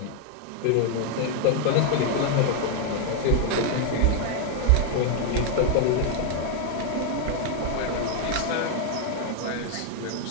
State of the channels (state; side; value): different; both; correlation 0.00